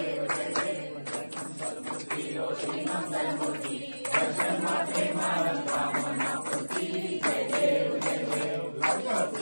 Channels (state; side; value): inverted; both; correlation -1.00